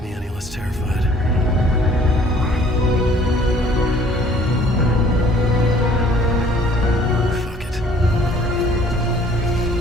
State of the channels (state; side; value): normal; both; correlation 0.56